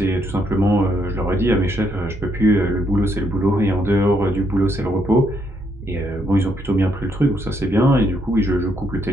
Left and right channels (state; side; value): normal; both; correlation 0.74